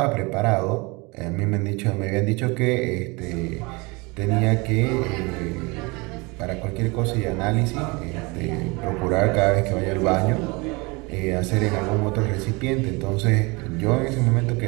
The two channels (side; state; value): left; quieter; 26.7 dB